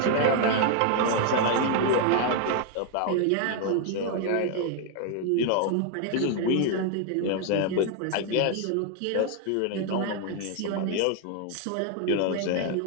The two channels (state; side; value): different; both; correlation 0.00